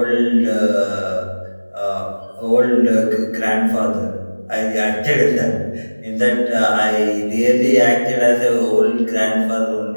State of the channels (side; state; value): both; inverted; correlation -1.00